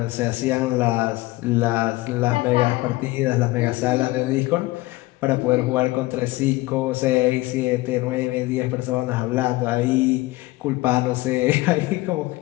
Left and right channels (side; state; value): right; quieter; 19.8 dB